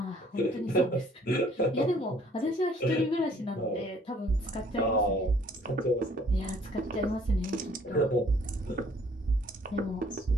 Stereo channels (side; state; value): both; normal; correlation 0.59